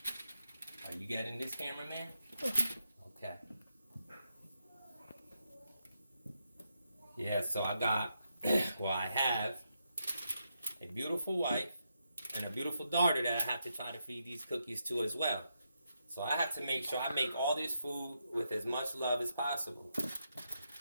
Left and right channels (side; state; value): both; inverted; correlation -0.82